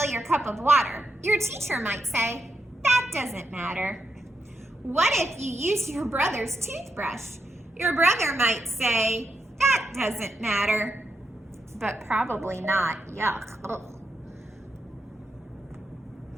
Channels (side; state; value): both; normal; correlation 0.84